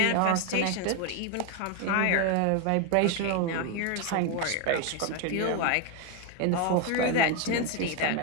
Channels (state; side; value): different; both; correlation 0.01